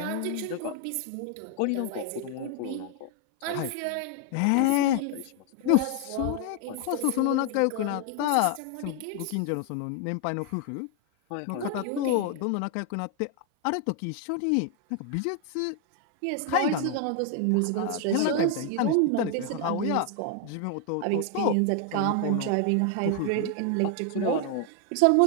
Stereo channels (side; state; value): both; different; correlation 0.01